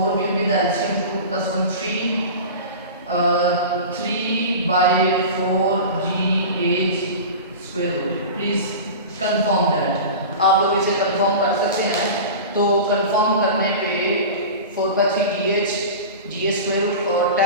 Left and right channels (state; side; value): inverted; both; correlation -0.31